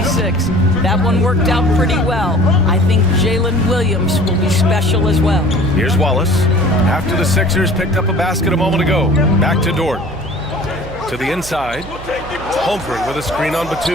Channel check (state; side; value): noise; right; hum, 14 dB below the sound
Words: That one worked out pretty well. I think Jalen Williams will be special as well. Here's Wallace. After the Sixers picked up a basket a moment ago. Back to Dort. To the inside. Holmgren with a screen on